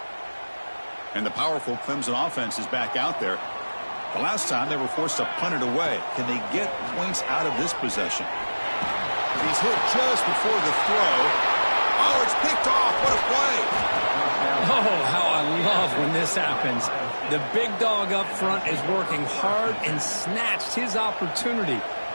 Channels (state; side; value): inverted; both; correlation -1.00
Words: And the powerful Clemson offense is back out there. The last time they were forced to punt it away. Can they get points out of this possession? He's hit just before the throw. Oh, it's picked off. What a play. Oh, how I love when this happens. The big dog up front is working hard and snatched his opportunity.